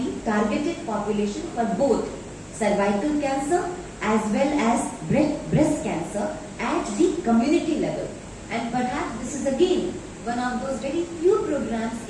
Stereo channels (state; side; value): identical; both; correlation 1.00